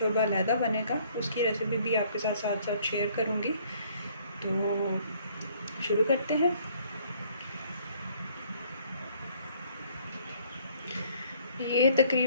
अलहदा बनेगा, उसकी रेसिपी भी आपके साथ साथ साथ शेयर करूँगी। तो शुरू करते हैं। ये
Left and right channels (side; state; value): both; inverted; correlation -0.61